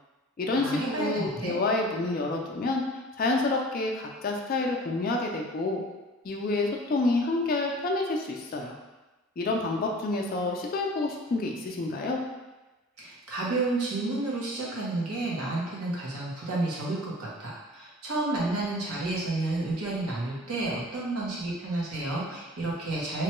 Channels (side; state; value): both; normal; correlation 0.44